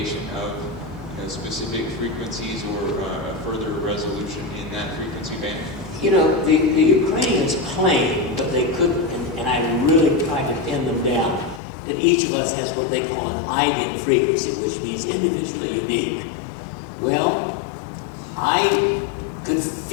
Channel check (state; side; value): drops out; right; at 11.6 s